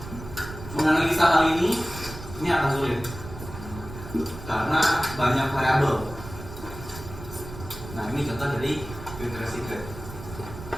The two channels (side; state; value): right; noise; rumble, 12 dB below the sound